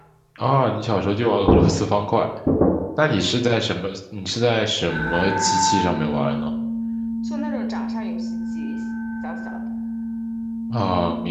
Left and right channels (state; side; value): identical; both; correlation 1.00